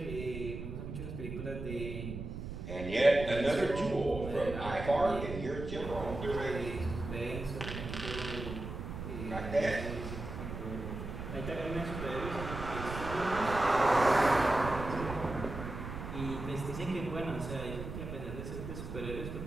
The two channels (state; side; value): noise; right; rumble, 7 dB below the sound